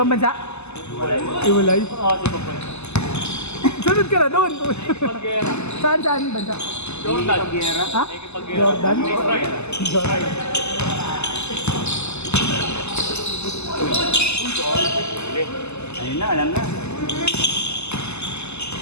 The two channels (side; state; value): right; late; 0.81 ms